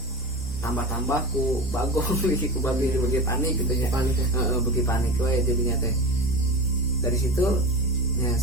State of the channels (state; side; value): normal; both; correlation 0.27